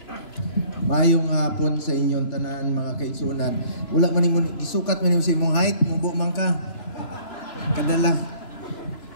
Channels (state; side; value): late; right; 3.0 ms